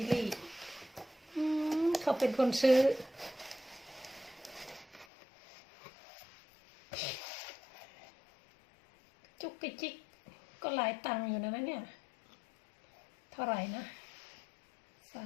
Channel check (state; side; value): drops out; right; at 5.1 s